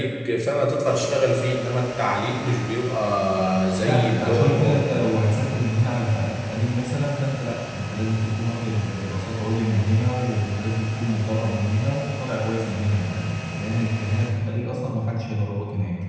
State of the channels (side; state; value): both; identical; correlation 1.00